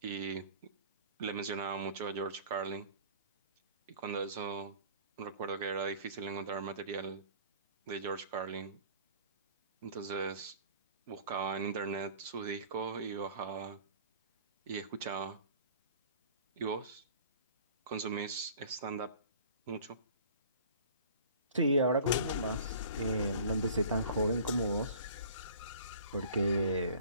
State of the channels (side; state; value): both; inverted; correlation -0.47